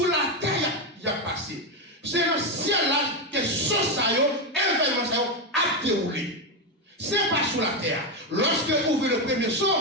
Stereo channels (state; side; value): normal; both; correlation 0.08